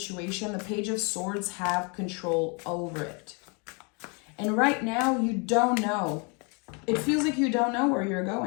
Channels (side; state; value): right; quieter; 33.4 dB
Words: The Page of Swords have control over it. And right now, you don't know. It feels like you don't know where you're